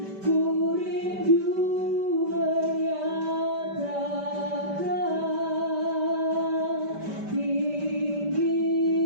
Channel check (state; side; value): late; left; 5.1 ms